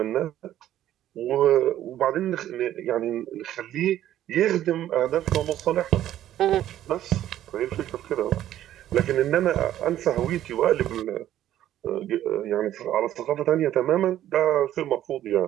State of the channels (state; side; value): quieter; left; 12.4 dB